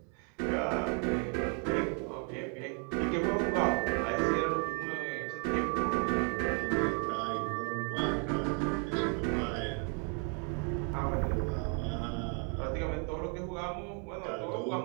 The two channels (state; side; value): quieter; left; 39.4 dB